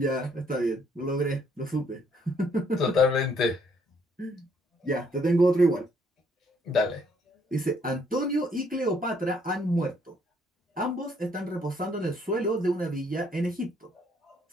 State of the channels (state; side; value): normal; both; correlation 0.67